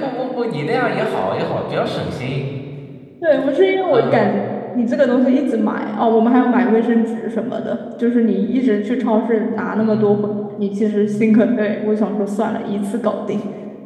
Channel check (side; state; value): both; identical; correlation 1.00